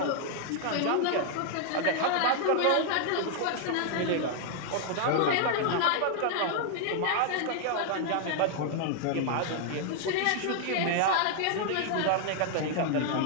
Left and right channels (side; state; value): both; different; correlation 0.00